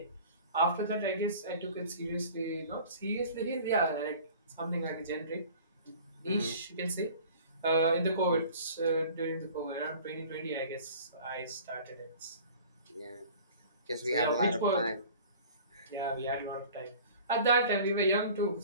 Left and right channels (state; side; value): inverted; both; correlation -0.45